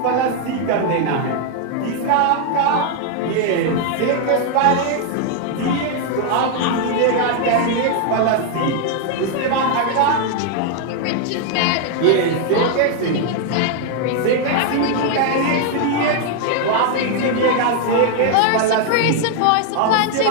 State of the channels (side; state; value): both; different; correlation 0.00